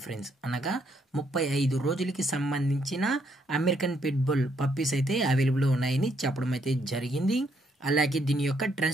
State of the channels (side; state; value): both; normal; correlation 0.72